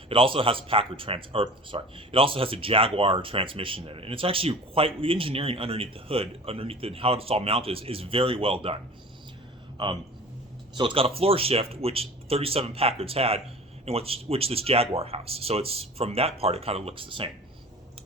It also has a it also has a Jaguar transmission in it, and it's actually the engineering underneath the hood, how it's all mounted is very well done. So it's got a floor shift, which 37 Packards had, and which this Jaguar has. So it's, from that part, it kind of looks the same.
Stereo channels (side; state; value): both; normal; correlation 0.40